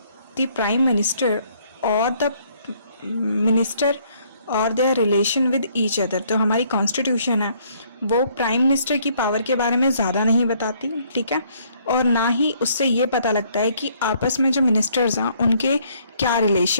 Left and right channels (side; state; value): both; inverted; correlation -0.65